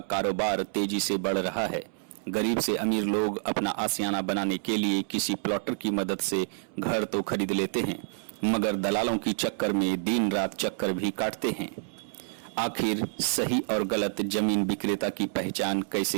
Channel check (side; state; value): left; silent; 59 dB below the other